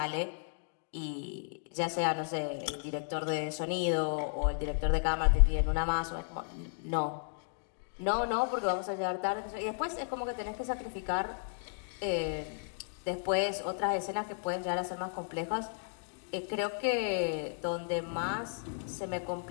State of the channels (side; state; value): right; silent; digital silence